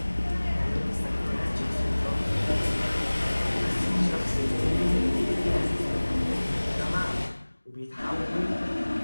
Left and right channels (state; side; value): inverted; both; correlation -1.00